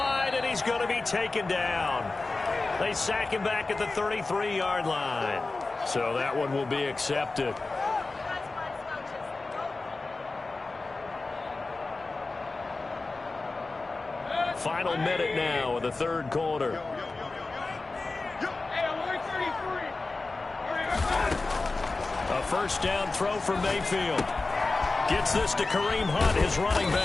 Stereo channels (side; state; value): right; quieter; 3.5 dB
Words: and he's going to be taken down. They sack him back at the 33-yard line. So that one will be accepted. Final minute now of the third quarter. A first down throw for Mayfield. Gets this to Kareem Hunt, his running